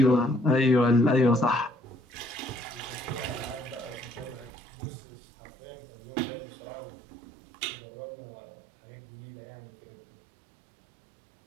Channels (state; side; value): drops out; left; at 4.5 s